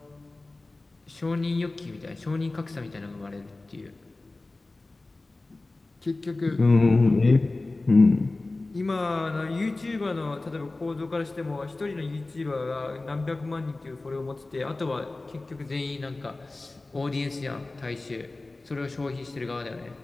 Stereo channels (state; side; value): quieter; right; 3.1 dB